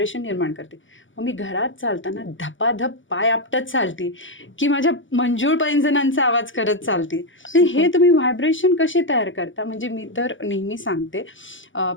निर्माण करते. मग मी घरात चालताना धपाधप पाय आपटत चालते की माझ्या मंजूळ पैंजणांचा आवाज करत चालते. हे तुम्ही व्हायब्रेशन कसे तयार करता. म्हणजे मी तर नेहमी सांगते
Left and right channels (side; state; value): right; late; 0.56 ms